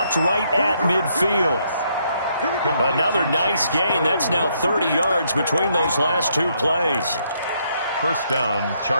right at midfield. Another nice gain. That's now 30 yards between those last two plays. 1st down,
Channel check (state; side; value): inverted; both; correlation -0.73